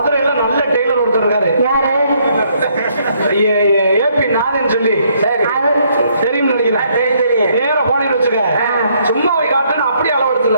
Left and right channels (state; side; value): inverted; both; correlation -0.69